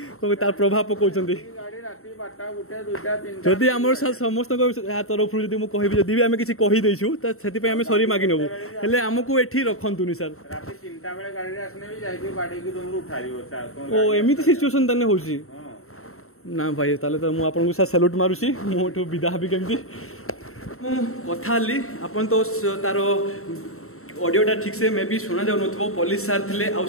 ତାର ପ୍ରଭାବ ପକାଉଛନ୍ତି ଯଦି ଆମର ସମସ୍ତଙ୍କ ତରଫରୁ ଯଦି ମୁଁ କହିବି ଯଦି ବି ଆମେ କିଛି କହିଦେଇଛୁ ତ ସେଥିପାଇଁ ଆମେ ସରି ମାଗି ନେବୁ ହେଲେ ଆମକୁ ଏଠି ରଖନ୍ତୁନି ସାର୍ ଓ ଏମିତି ସିଚୁଏସନ୍ ତାହେଲେ ହଉଛି ନା ଭାଇ ତାହେଲେ ତ ମୁଁ ଆପଣଙ୍କୁ ସାର୍ ସାଲ୍ୟୁଟ୍ ମାରୁଛି ମୁଁ ଏଠୁ ବିଦା ହେବି କେମିତି ମୁଁ କଥା ହେଲି ଆପଣ ତ ତାର ऑडियोटा ठीक से मे भी शुणा जाऊ पुलिस सार थे आउ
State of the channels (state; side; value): late; right; 0.63 ms